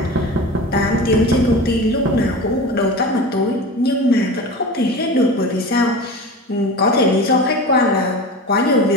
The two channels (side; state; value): both; normal; correlation 0.31